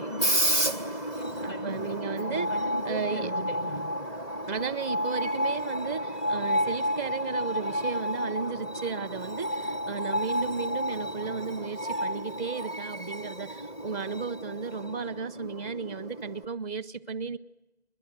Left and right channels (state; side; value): late; right; 2.0 ms